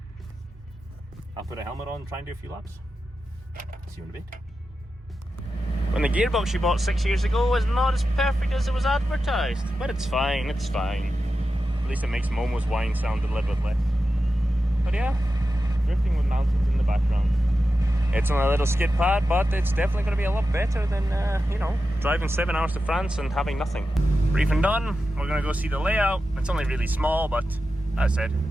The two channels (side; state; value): both; normal; correlation 0.91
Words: I'll put a helmet on and try and do a few laps. See you in a bit. When the gearbox you bought 6 years ago was not as perfect as it was advertised, but it's fine, it's fine. At least it makes Momo's whine sound a little bit less. But yeah, drifting with mountains in the background. It's on a little skid pad, but it's definitely going to be a lot better than, you know, driving 7 hours to France and having nothing. Briefing done, we're going to go see the layout. It's only really small, but as I